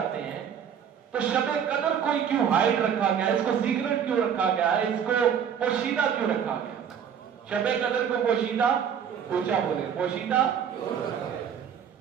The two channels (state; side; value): quieter; left; 8.1 dB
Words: ہیں، تو شب قدر کو کیوں ہائڈ رکھا گیا، اس کو سیکرٹ کیوں رکھا گیا، اس کو پوشیدہ کیوں رکھا گیا. شب قدر کو پوشیدہ، پوچھا بولے پوشیدہ،